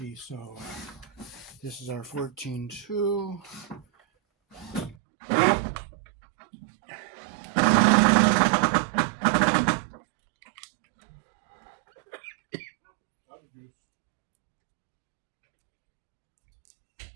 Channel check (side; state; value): left; drops out; at 5.0 s